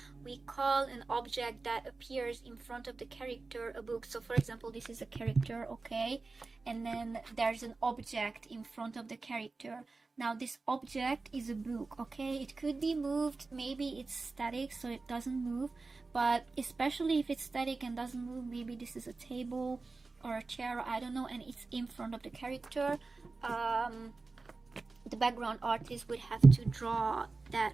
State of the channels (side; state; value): left; quieter; 3.8 dB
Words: we call an object that appears in front of the character a book. So for example, this is a character, okay, and then there's an object in front of the character. Now this object is a book, okay? It could be moved, maybe it's static so it doesn't move, but especially if it's static and doesn't move, maybe this is a table or a chair, I don't know, and it's in front of the character. The background artist would have to draw that